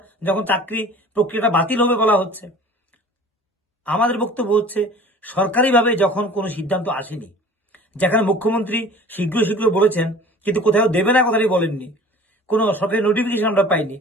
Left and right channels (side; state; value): both; normal; correlation 0.45